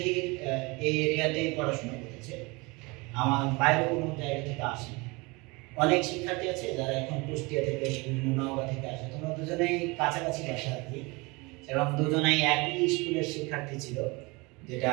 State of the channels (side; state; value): left; quieter; 25.8 dB